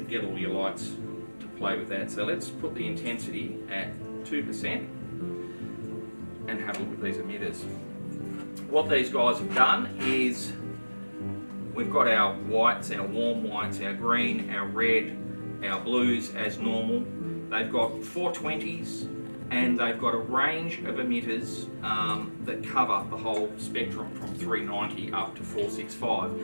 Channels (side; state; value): both; inverted; correlation -1.00